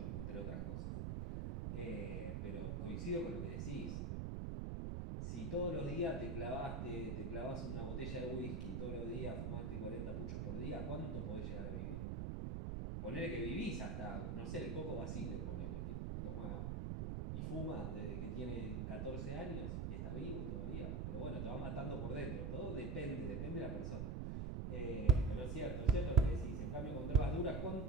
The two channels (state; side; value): noise; right; rumble, 2 dB below the sound